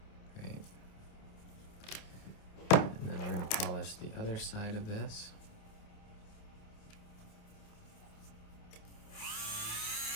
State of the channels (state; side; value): late; right; 28 ms